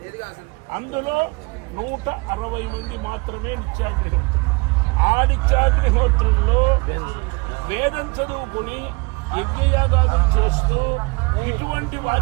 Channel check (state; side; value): quieter; left; 27.4 dB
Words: అందులో 160 మంది మాత్రమే నిత్యాగ్నిహోత్రులు. ఆ నిత్యాగ్నిహోత్రుల్లో వేదం చదువుకుని యజ్ఞయాగాదులు చేస్తూ ఇటువంటి